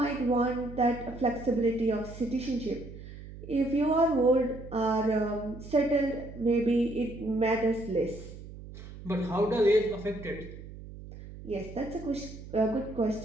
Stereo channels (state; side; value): noise; right; hum, 14 dB below the sound